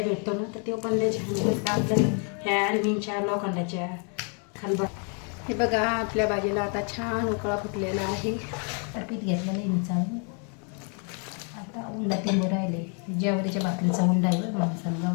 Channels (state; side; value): quieter; right; 39.4 dB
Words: भेटतो ना तर ते पण त्याच्या आपल्या ह्या ॲल्युमिनच्या लोखंडाच्या खलबत्त्या. हे बघा आपल्या भाजीला आता छान उकळा फुटलेला आहे. पीठ घेतलेलं आहे मी चालू. आता उंडा ते राहिले. ज्वारीच्या भाकरीचा उंडा आहे माणसाला